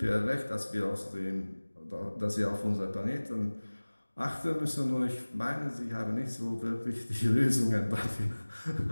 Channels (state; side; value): inverted; both; correlation -1.00